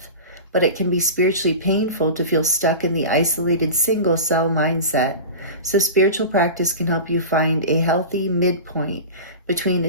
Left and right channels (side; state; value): both; inverted; correlation -0.30